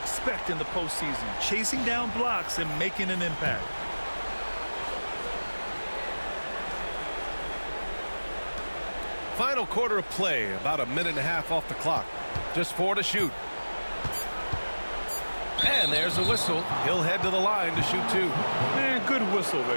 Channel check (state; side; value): inverted; both; correlation -1.00